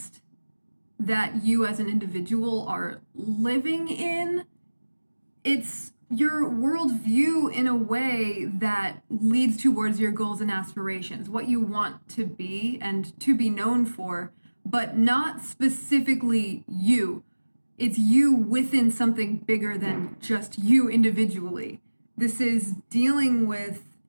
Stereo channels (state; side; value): inverted; both; correlation -1.00